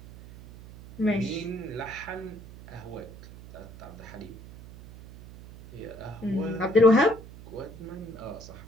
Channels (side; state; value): right; noise; hum, 16 dB below the sound